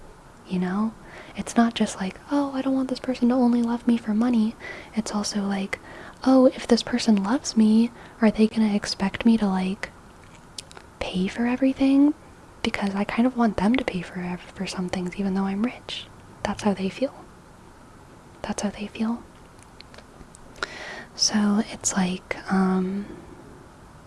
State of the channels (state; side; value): identical; both; correlation 1.00